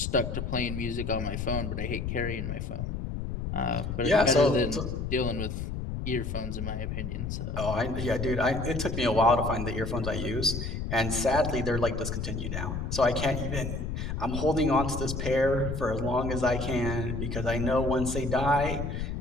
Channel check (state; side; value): noise; left; rumble, 4 dB below the sound